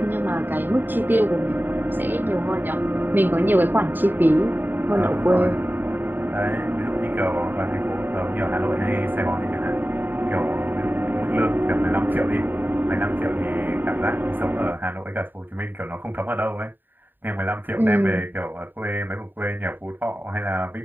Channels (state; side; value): late; left; 0.092 ms